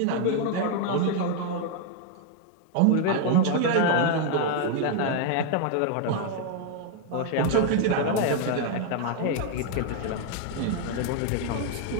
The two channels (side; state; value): both; different; correlation 0.00